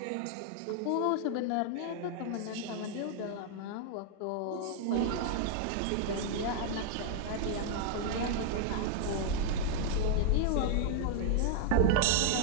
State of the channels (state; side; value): different; both; correlation 0.00